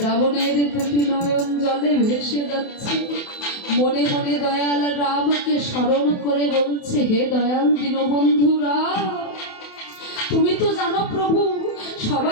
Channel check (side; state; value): right; late; 28 ms